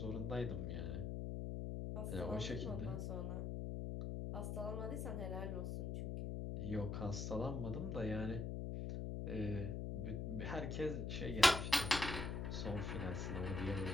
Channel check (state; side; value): noise; left; hum, 2 dB below the sound